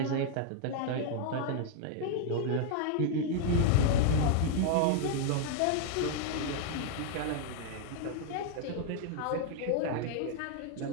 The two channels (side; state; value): both; different; correlation 0.00